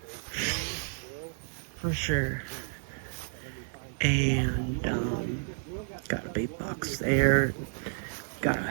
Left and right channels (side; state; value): left; silent; digital silence